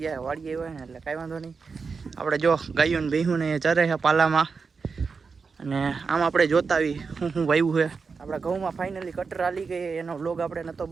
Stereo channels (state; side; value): quieter; left; 5.0 dB